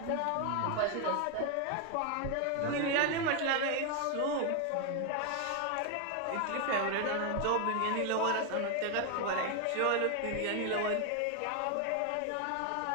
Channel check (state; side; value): different; both; correlation 0.01